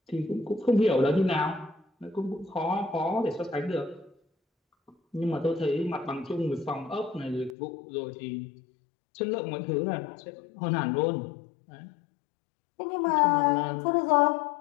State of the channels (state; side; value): drops out; right; at 7.6 s